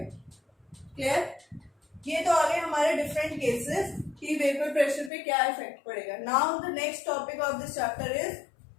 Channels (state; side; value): drops out; right; at 5.1 s